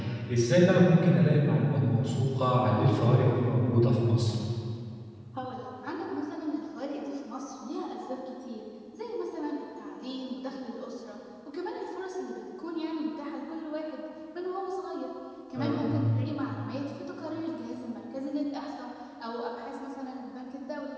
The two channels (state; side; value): identical; both; correlation 1.00